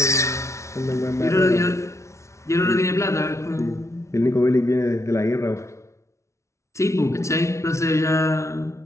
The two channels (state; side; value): late; right; 0.14 ms